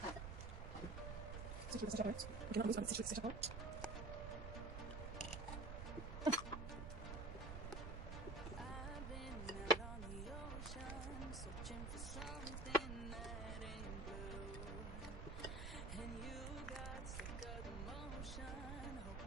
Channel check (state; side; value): noise; right; rumble, 5 dB below the sound